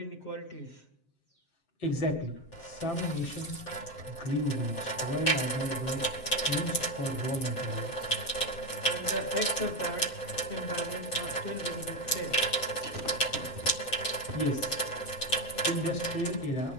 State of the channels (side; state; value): right; late; 7.6 ms